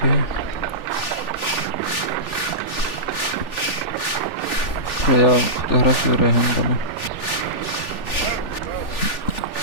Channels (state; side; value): late; right; 3.4 ms